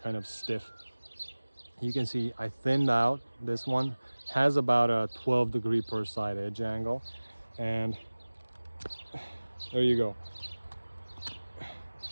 stiff. You can see I thinned out this one. Has about a 12 degree per side edge angle. And there you go.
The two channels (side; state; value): both; inverted; correlation -1.00